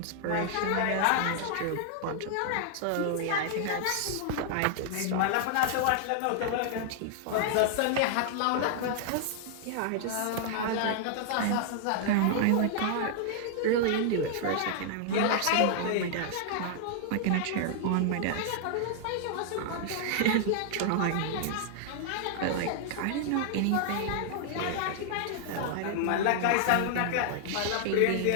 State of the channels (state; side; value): different; both; correlation -0.01